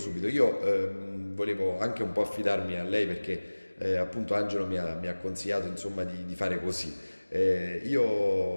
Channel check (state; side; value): inverted; both; correlation -1.00